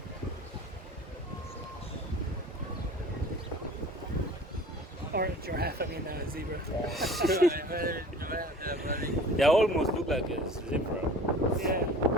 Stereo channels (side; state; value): both; normal; correlation 0.43